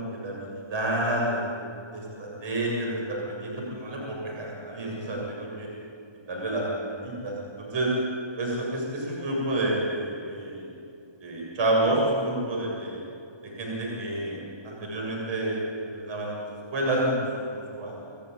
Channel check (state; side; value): late; left; 1.2 ms